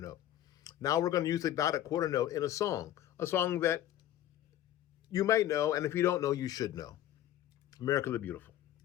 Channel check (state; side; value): quieter; right; 12.5 dB